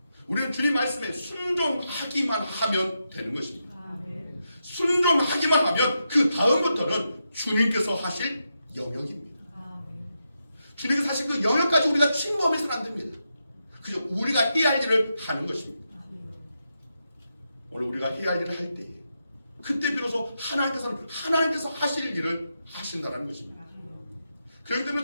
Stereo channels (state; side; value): inverted; both; correlation -0.86